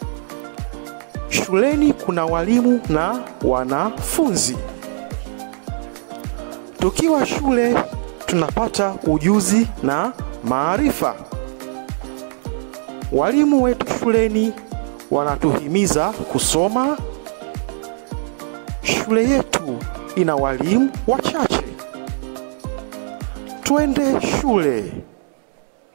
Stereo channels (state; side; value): silent; left; digital silence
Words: Shuleni kuna walimu na wanafunzi. Tukiwa shule tunapata ujuzi na maarifa. Walimu wetu shuleni wanatuhimiza kusoma. Shule yetu ina walimu wachache. Twende shule.